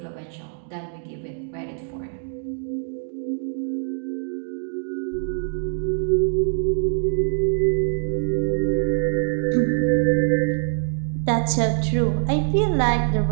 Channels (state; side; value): silent; left; digital silence